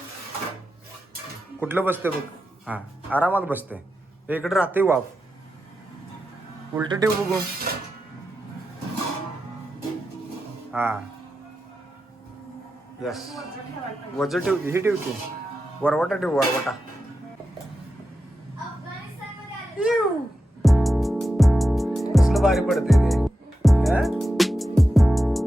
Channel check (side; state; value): both; normal; correlation 0.90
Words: कुठलं बसते बघ हा आरामात बसते इकडे राहते वाफ उलट ठेव बघू हा यस वजन ठेव ही ठेवते वरवटा ठेव वरवटा कसलं भारी पडते ते हा?